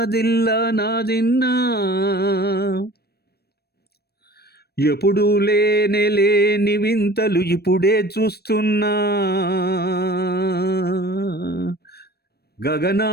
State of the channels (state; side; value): late; right; 0.47 ms